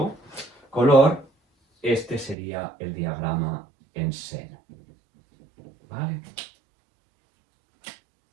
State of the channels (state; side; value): drops out; left; at 2.4 s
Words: color, este sería el diagrama en seno. ¿Vale?